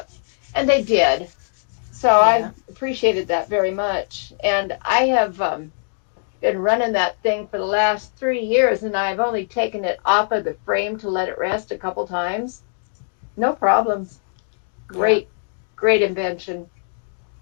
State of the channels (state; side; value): silent; right; digital silence